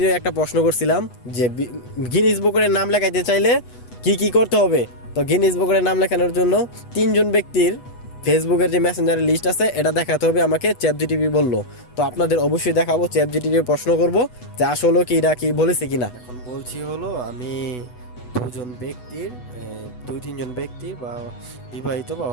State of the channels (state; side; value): late; right; 8.1 ms